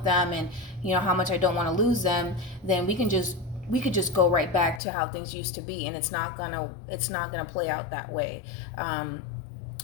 them, and, you know, how much I don't want to lose them, then we could just go right back to how things used to be, and it's not gonna play out that way.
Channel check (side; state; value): right; drops out; at 4.8 s